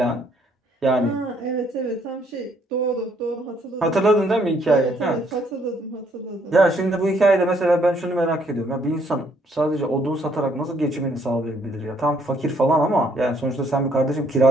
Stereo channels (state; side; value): normal; both; correlation 0.68